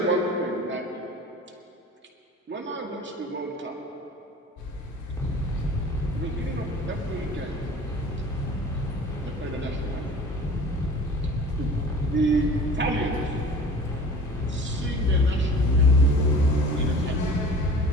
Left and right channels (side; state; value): both; normal; correlation 0.43